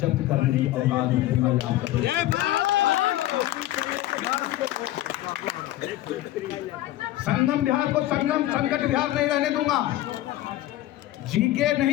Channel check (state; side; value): quieter; right; 15.1 dB